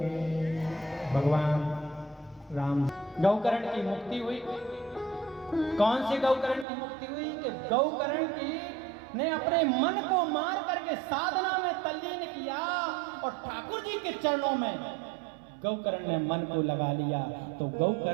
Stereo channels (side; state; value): left; drops out; at 6.7 s